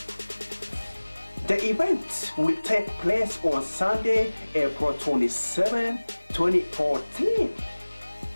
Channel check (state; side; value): inverted; both; correlation -1.00